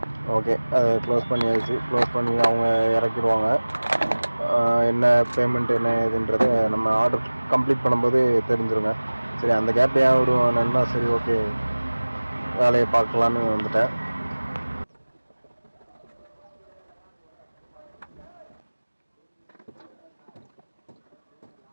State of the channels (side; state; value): both; inverted; correlation -1.00